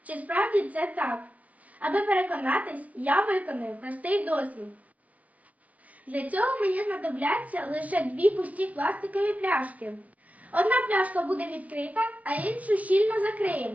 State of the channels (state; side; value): late; left; 0.072 ms